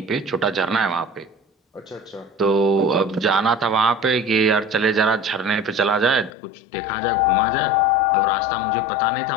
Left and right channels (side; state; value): right; drops out; at 6.3 s